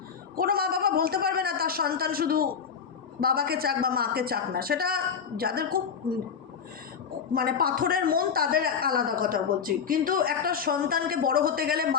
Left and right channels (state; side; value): quieter; right; 6.7 dB